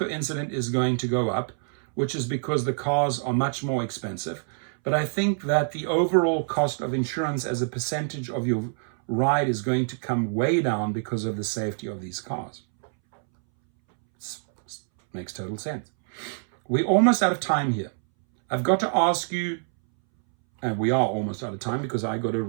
incident is going to go up, which is because the cars are much more expensive. But I think that the overall cost of insurance as a percentage of your ride is going to come way down because of the safety of these cars. Makes total sense. We're almost out of time here. I've got to ask you, and we are almost out of time because I got to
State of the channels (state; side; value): silent; left; 61 dB below the other